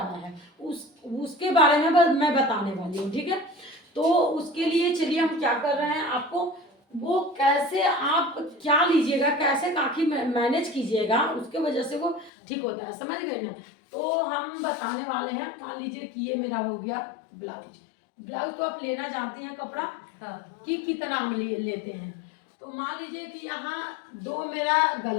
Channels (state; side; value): drops out; right; at 12.3 s